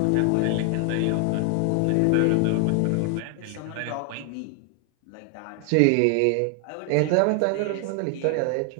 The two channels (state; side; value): different; both; correlation 0.00